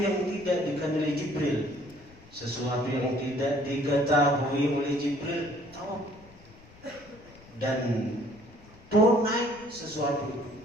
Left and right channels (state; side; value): noise; left; rumble, 23 dB below the sound